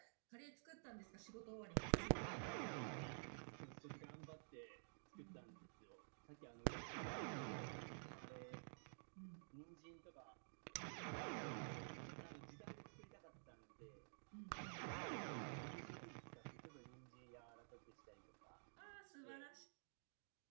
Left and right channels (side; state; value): left; silent; digital silence